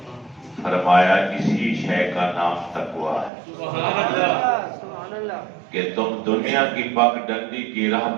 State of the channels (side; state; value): left; drops out; at 3.3 s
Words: فرمایا اسی شے کا نام تقوی ہے کہ تم دنیا کی پک ڈنڈی کی راہ